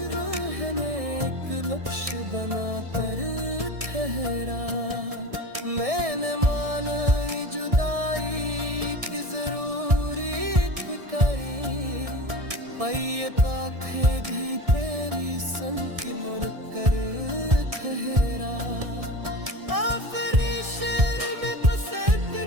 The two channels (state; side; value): late; left; 1.6 ms